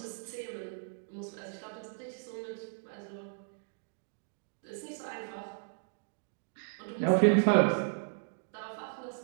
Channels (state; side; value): silent; left; digital silence